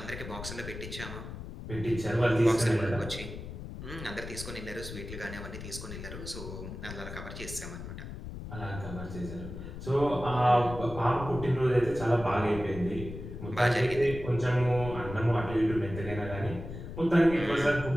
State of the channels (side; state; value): left; noise; rumble, 10 dB below the sound